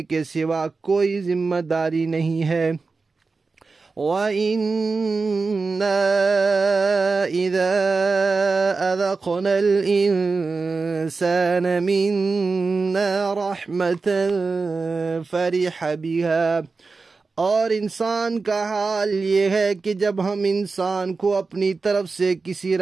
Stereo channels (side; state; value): left; quieter; 4.2 dB